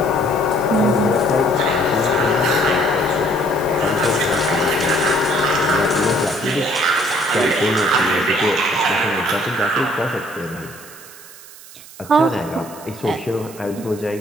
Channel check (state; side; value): noise; right; hiss, 19 dB below the sound